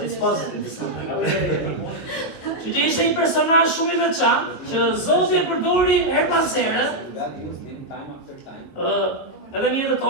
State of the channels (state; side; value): late; right; 21 ms